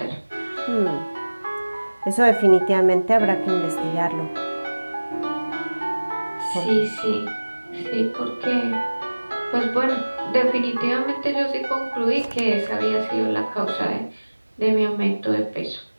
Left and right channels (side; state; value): both; inverted; correlation -1.00